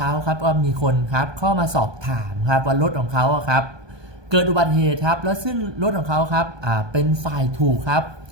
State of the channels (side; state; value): left; late; 1.2 ms